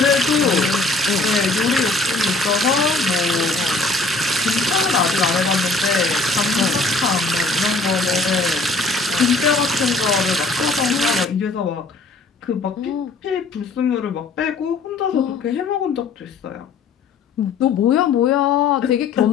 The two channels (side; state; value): right; quieter; 3.5 dB